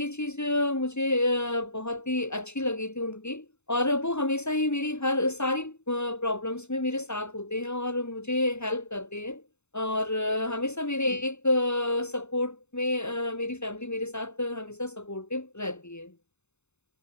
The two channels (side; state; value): right; late; 0.82 ms